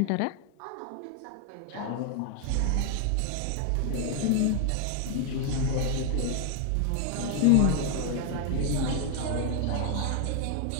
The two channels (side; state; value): both; different; correlation 0.00